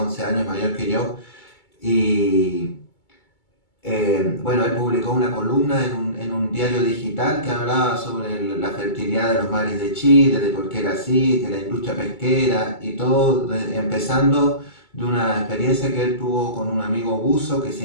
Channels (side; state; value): right; late; 2.3 ms